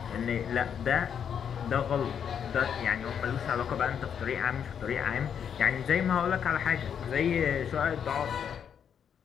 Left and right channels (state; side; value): quieter; right; 8.0 dB